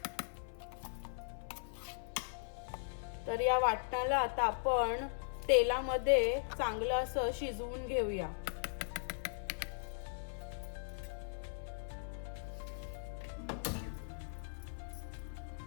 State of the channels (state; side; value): silent; right; 52 dB below the other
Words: तर या वाटणाला आता आपण तेलामध्ये चांगलं असं शिजवून घेऊया.